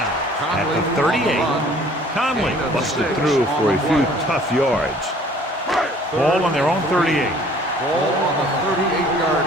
at the 38. Conley busted through for a few tough yards. Ball on their own 38. Ball on the 38-yard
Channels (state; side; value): normal; both; correlation 0.54